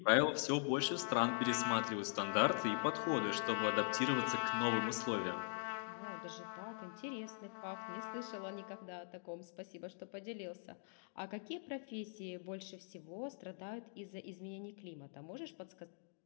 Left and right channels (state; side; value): silent; right; digital silence